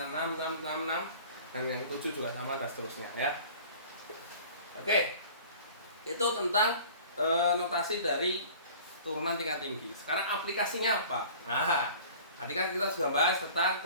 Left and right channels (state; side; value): inverted; both; correlation -0.45